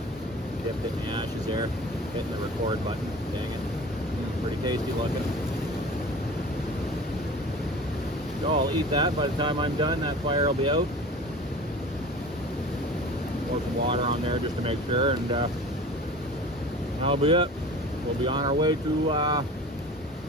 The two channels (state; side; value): normal; both; correlation 0.39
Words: Dipped it in the ashes there. Hitting the record button. Dang it. Pretty tasty looking. So I'll eat that. By the time I'm done, that fire will be out. Pour some water on there just to make sure, and that'll be it. We'll be on our way to the